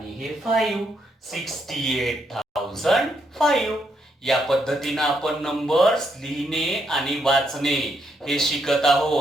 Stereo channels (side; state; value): both; normal; correlation 0.76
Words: हे 5. 68,005. या पद्धतीनं आपण नंबर्स लिहिणे आणि वाचणे हे शिकत